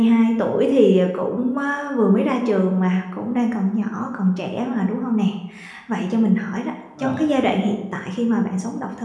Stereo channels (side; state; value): both; identical; correlation 1.00